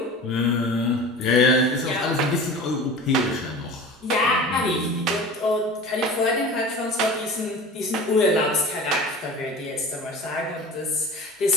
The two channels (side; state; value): both; normal; correlation 0.37